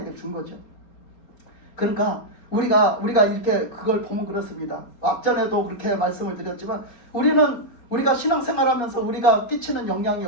준 거죠. 그러니까 우리가 이렇게 그걸 보면 그렇습니다. 앞전에도 그렇게 말씀을 드렸지만 우리가 신앙생활하면서 우리가 끼치는 영향이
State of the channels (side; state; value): right; late; 4.3 ms